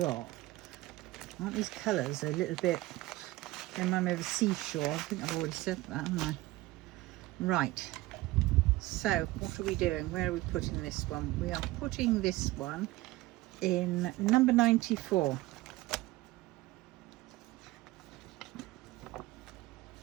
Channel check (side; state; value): left; quieter; 18.6 dB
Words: aren't these colours a little bit, they remind me of a seashore? I think I've already said that, haven't I? Right, so what are we doing? Where are we putting this one? We are putting this one in number 94.